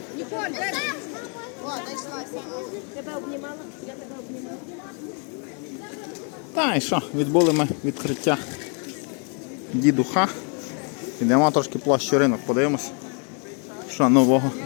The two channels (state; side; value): quieter; right; 38.6 dB